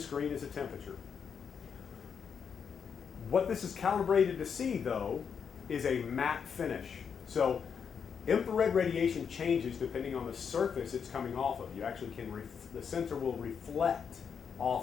screen as a temperature. What this is calibrated to see, though, is a matte finish. So infrared radiation changes depending on the surface it's coming off of. You actually can, the sensor will reflect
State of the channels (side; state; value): right; quieter; 6.8 dB